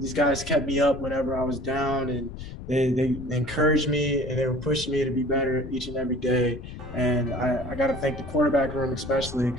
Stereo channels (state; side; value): noise; left; rumble, 11 dB below the sound